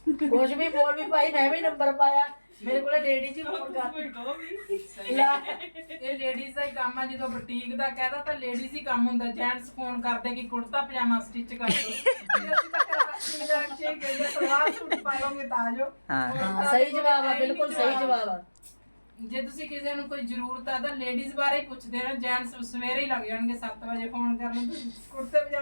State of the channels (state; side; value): inverted; both; correlation -1.00